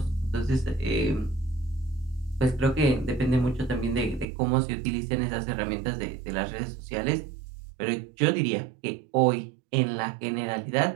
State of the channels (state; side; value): drops out; left; at 4.2 s